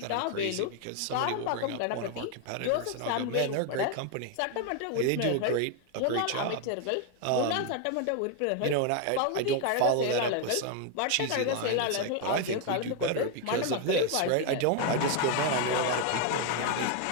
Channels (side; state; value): both; different; correlation 0.01